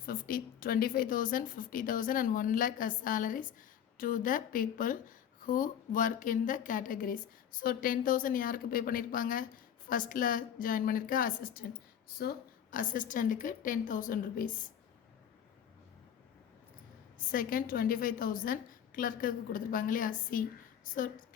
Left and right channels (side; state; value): right; quieter; 9.2 dB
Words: 50 25,000 50,000 and 1 lakh as salaries to the people who work in the categories. So 10,000 யாருக்கு பே பண்ணியிருப்பாங்க, ஃபஸ்ட்டில் ஜாயின் பண்ணியிருக்க அசிஸ்டன்ட். ஸோ அசிஸ்டண்ட்டுக்கு 10,000 rupees. செகண்ட் 25,000 கிளர்க்குக்கு கொடுத்துருப்பாங்க இல்லையா சி. ஸோ